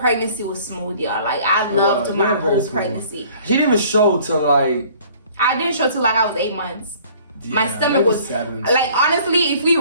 was smooth, y'all. Like, I loved my whole pregnancy. She didn't even show till like. I didn't show till like I was 8 months. Yeah, my stomach was 7. Like, honestly, if we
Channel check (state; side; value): inverted; both; correlation -0.53